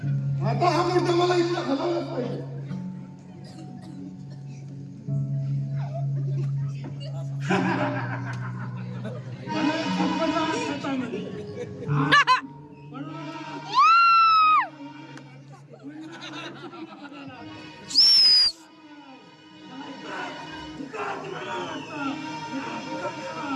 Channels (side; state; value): both; identical; correlation 1.00